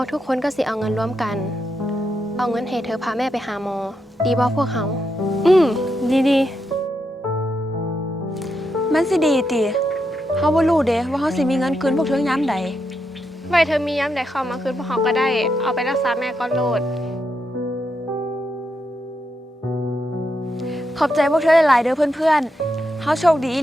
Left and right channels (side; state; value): both; normal; correlation 0.83